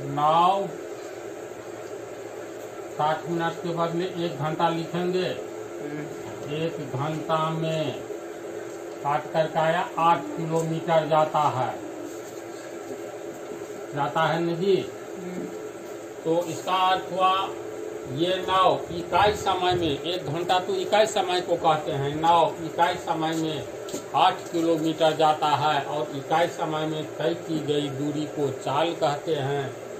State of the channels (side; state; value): both; identical; correlation 1.00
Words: नाव 60 मिनट के बदले 1 घंटा लिखेंगे। 1 घंटा में काट करके आया 8 किलोमीटर जाता है न जी। तो इसका अर्थ हुआ ये नाव इकाई समय में, 1 घंटा तो इकाई समय को कहते हैं, नाव इकाई समय में 8 किलोमीटर जाता है और इकाई समय में तय की गई दूरी को चाल कहते हैं।